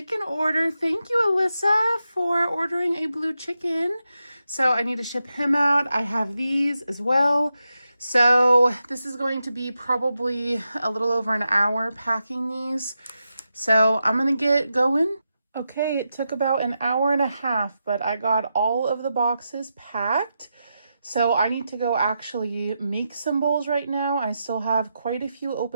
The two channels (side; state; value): both; inverted; correlation -0.88